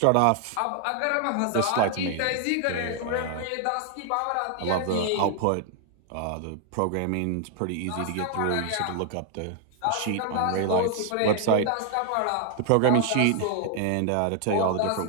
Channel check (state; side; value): different; both; correlation 0.00